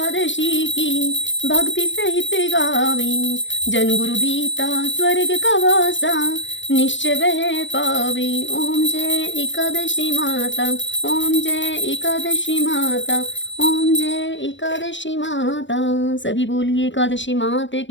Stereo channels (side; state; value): right; late; 0.54 ms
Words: की भक्ति सहित गावे। जन गुरु दीता स्वर्ग का वासा, निश्चय वह पावे। ओम जय एकादशी माता, ओम जय एकादशी माता, ओम जय एकादशी माता। सभी बोलिए एकादशी माता